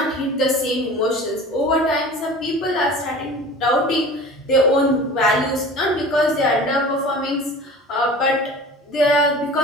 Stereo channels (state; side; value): normal; both; correlation 0.39